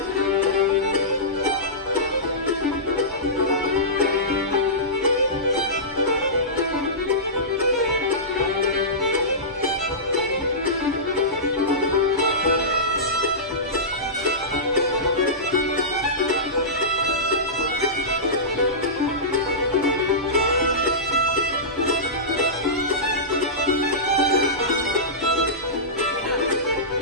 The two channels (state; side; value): normal; both; correlation -0.18